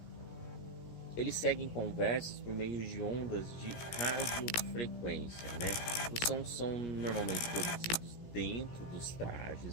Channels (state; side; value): late; right; 17 ms